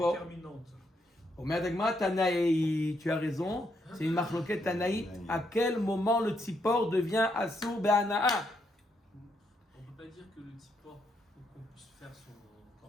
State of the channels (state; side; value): normal; both; correlation 0.77